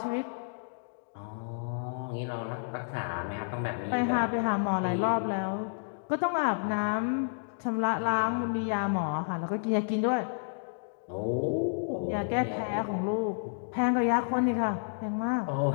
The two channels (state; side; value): silent; right; digital silence